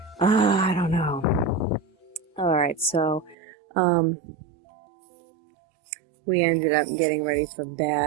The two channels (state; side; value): drops out; left; at 3.4 s